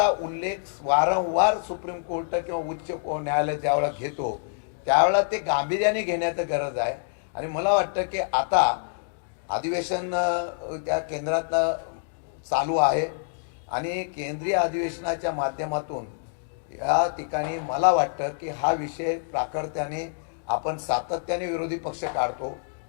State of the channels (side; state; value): right; silent; digital silence